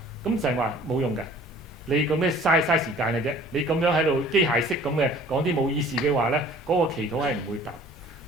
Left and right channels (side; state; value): both; normal; correlation 0.50